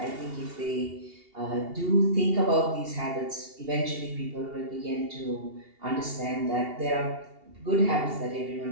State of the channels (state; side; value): late; left; 2.8 ms